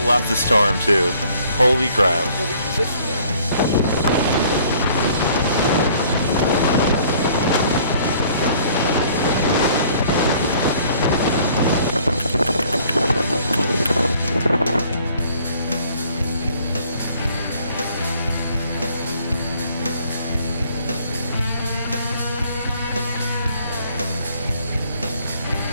left the storm too. Holy crap.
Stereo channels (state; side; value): inverted; both; correlation -0.58